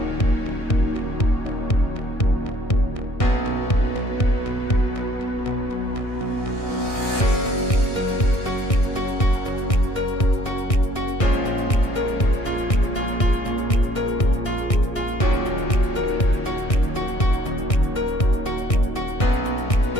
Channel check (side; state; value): right; late; 1.6 ms